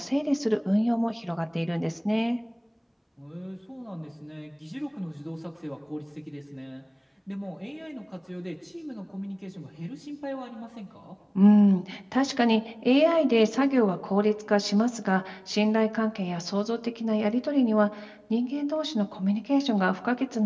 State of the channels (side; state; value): both; identical; correlation 1.00